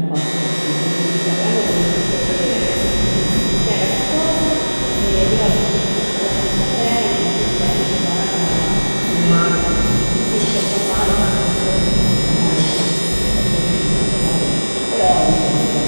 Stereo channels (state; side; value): inverted; both; correlation -1.00